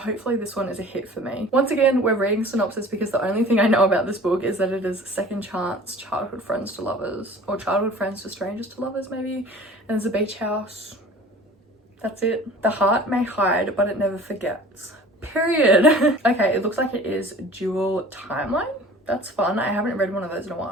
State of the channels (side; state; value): both; normal; correlation 0.45